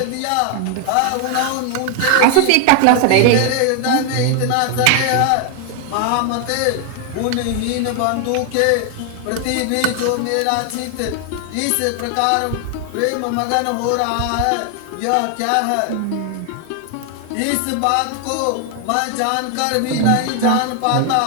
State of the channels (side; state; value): both; different; correlation 0.00